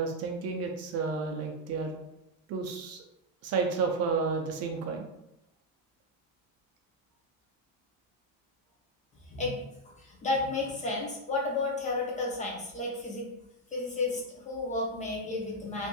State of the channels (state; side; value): normal; both; correlation 0.01